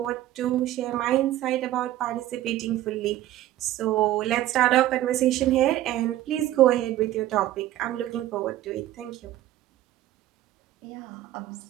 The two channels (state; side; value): quieter; left; 14.0 dB